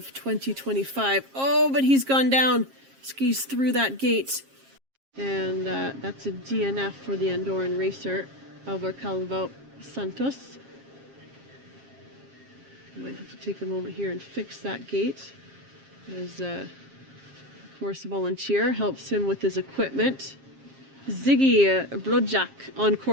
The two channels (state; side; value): late; left; 7.4 ms